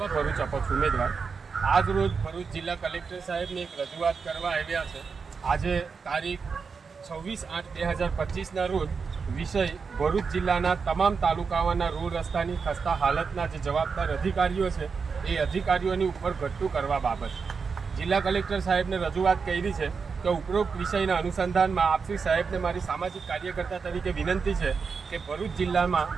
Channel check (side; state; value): left; quieter; 5.4 dB